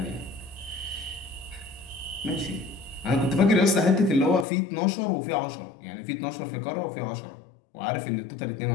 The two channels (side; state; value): right; drops out; at 4.5 s